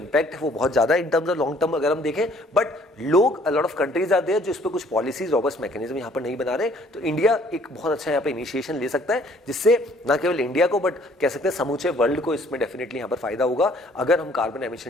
है वो बहुत ज्यादा in terms of long term अगर हम देखें, बट लोग a lot of countries are there जो इस पर कुछ पॉलिसीज, रॉबस्ट मैकेनिज्म यहाँ पर नहीं बना रहे। तो इंडिया एक बहुत अच्छा यहाँ पे इनिशिएशन ले सकता है, जिससे न केवल इंडिया को बट कह सकते हैं समूचे वर्ल्ड को इसमें डेफिनेटली यहाँ पर फायदा होगा, अगर हम कार्बन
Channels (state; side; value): normal; both; correlation 0.59